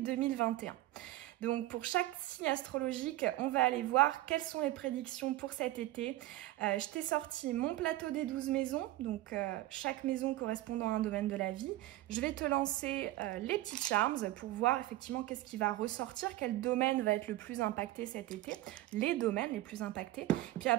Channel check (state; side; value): quieter; left; 16.2 dB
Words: Donc pour chaque signe astrologique, on va aller voir quelles sont les prédictions pour cet été. Je t'ai sorti mon plateau des 12 maisons, donc chaque maison correspondant à un domaine de la vie. Je vais te lancer les petits charms pour voir effectivement qu'est-ce qui va ressortir, quel domaine va être le plus impacté cet été, les domaines les plus impactés. Puis